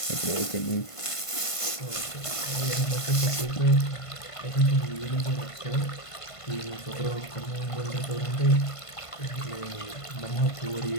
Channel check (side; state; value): right; late; 1.5 ms